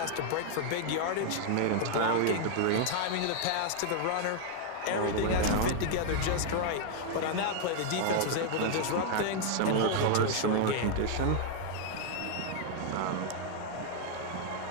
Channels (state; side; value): different; both; correlation 0.00